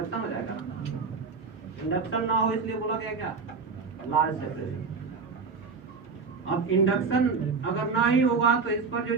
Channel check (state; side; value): quieter; left; 4.9 dB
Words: हो जाएगा ना। इंडक्शन ना हो इसलिए बोला गया क्या, लार्ज सेपरेशन। अब इंडक्शन अगर ना ही होगा तो इस पर जो